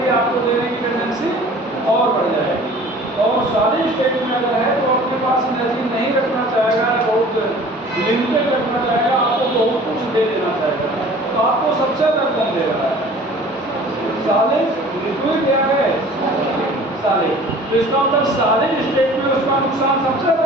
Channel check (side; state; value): both; normal; correlation 0.46